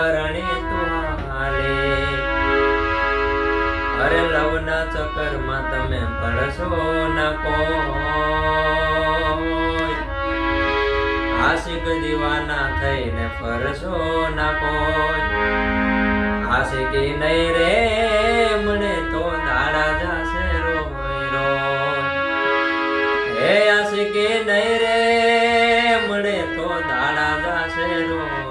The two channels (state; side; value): identical; both; correlation 1.00